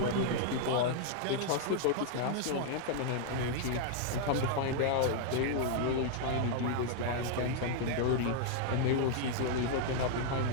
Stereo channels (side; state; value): both; different; correlation 0.00